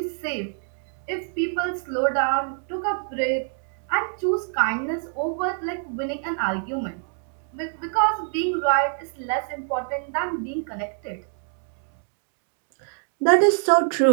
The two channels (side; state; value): left; silent; 61 dB below the other